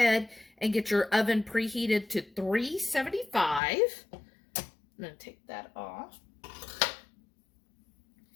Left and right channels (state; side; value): drops out; right; at 3.6 s